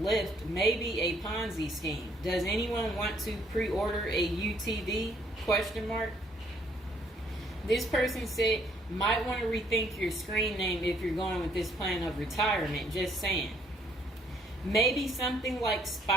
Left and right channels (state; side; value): normal; both; correlation 0.66